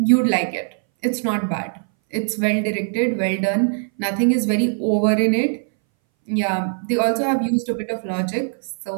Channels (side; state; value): left; silent; 62 dB below the other